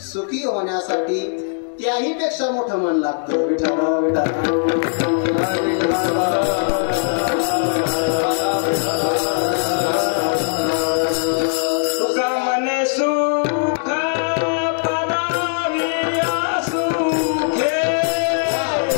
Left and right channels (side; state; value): right; silent; digital silence